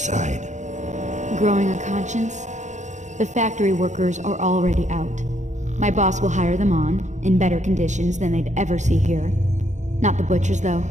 Growing a conscience? The factory workers are already out. My boss will hire them on, in better conditions than they'd ever see here. Not the butchers, though.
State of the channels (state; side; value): late; left; 0.35 ms